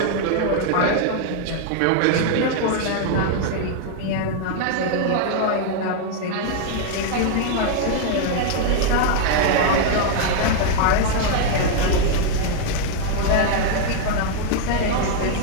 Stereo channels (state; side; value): different; both; correlation 0.00